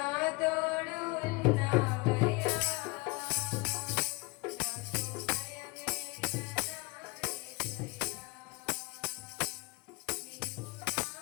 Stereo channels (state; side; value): quieter; right; 23.7 dB